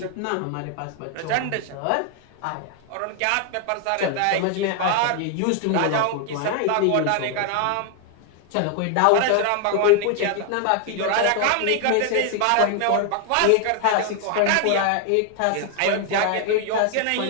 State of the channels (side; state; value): both; different; correlation 0.00